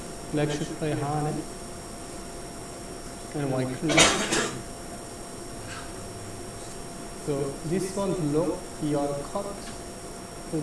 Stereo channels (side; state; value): both; identical; correlation 1.00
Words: Black should play Hane and white clear. So this one block, here cut, So